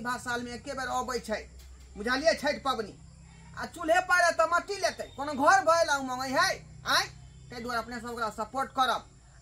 साल में एके बेर अबै छै बुझलिए छठ पबनी आ चूल्हे पारे तो मट्टी लेते कोनो घर भइला उमंग है तै दुआरे अपने सब ओकरा सपोर्ट करब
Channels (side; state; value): both; identical; correlation 1.00